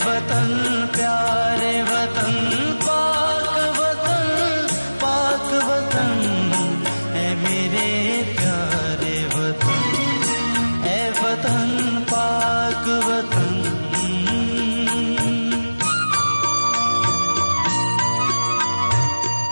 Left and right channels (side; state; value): both; inverted; correlation -1.00